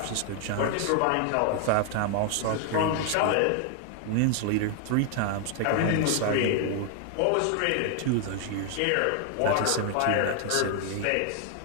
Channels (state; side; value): different; both; correlation 0.00